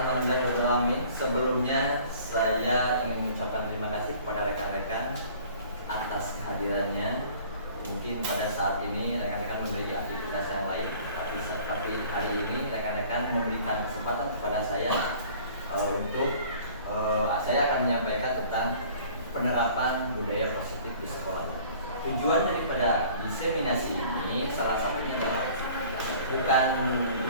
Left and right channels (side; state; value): both; inverted; correlation -0.50